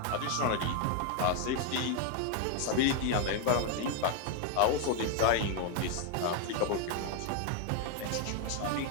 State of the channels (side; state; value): both; different; correlation 0.01